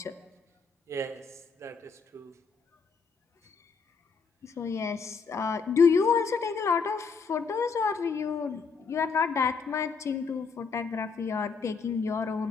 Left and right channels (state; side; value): quieter; right; 5.2 dB